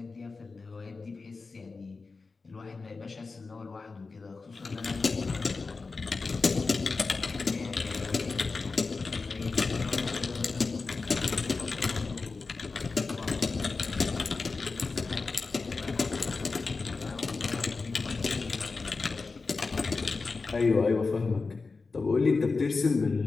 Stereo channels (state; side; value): quieter; right; 4.2 dB